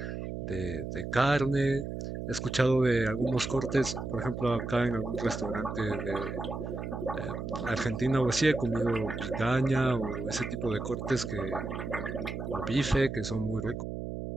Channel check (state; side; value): noise; right; hum, 5 dB below the sound